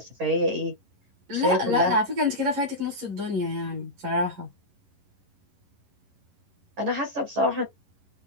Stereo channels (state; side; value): late; left; 11 ms